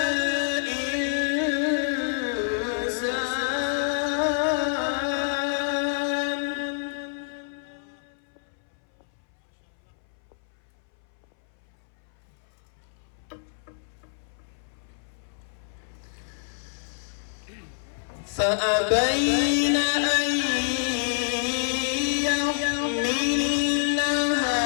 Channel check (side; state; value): right; silent; 60 dB below the other